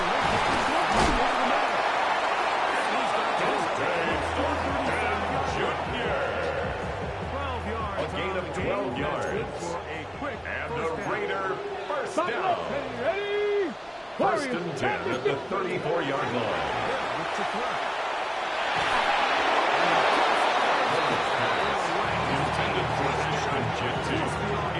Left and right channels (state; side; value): identical; both; correlation 1.00